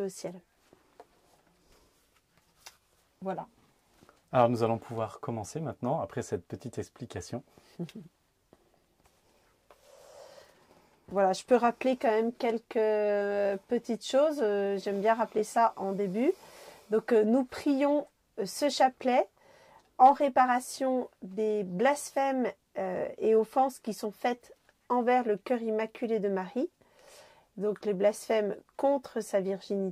au ciel. Voilà. Alors nous allons pouvoir commencer maintenant, après cette petite explication. Voilà, je peux rappeler quand même quelques petites choses, j'aime bien rappeler ça en début. Donc nous prions ce chapelet en réparation des blasphèmes et offenses qui sont faites envers le cœur immaculé de Marie. Donc les blasphèmes contre sa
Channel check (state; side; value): identical; both; correlation 1.00